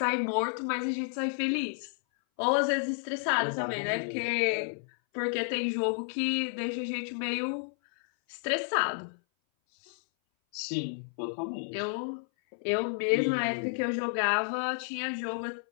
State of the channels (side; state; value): right; silent; 57 dB below the other